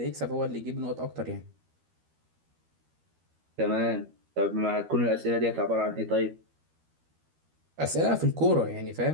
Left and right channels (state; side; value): late; left; 13 ms